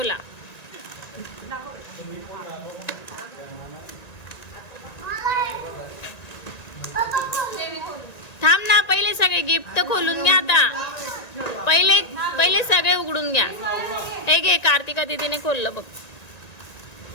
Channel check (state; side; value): late; right; 1.9 ms